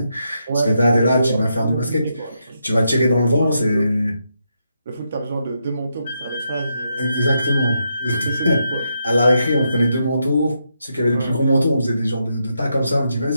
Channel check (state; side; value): inverted; both; correlation -0.82